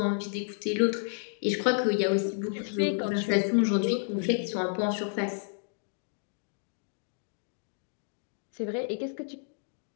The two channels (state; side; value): silent; right; 57 dB below the other